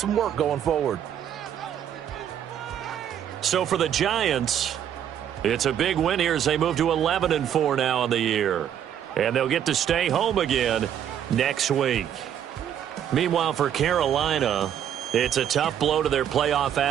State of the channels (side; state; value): left; quieter; 9.7 dB